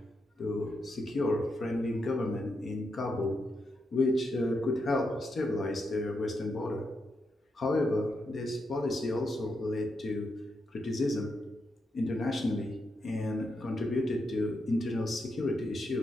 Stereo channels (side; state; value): both; normal; correlation 0.83